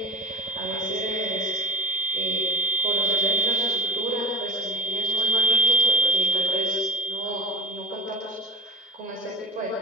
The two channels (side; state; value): both; normal; correlation 0.39